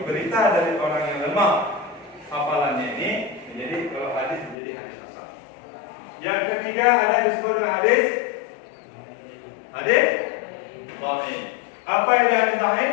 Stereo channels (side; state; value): right; drops out; at 4.5 s